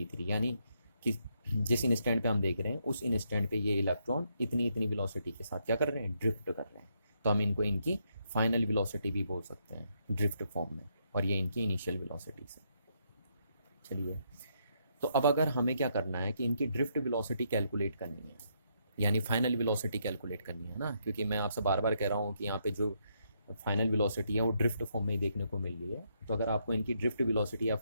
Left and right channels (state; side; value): inverted; both; correlation -0.76